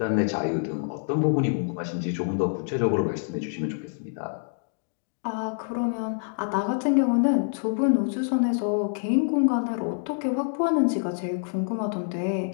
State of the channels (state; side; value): silent; right; digital silence